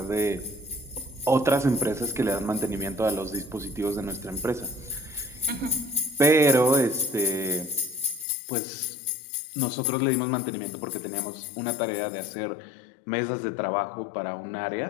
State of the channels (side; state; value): right; drops out; at 8.2 s